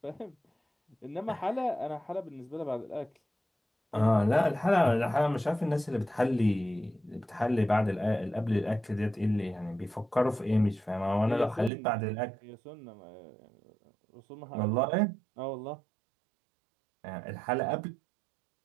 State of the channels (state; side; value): drops out; left; at 11.7 s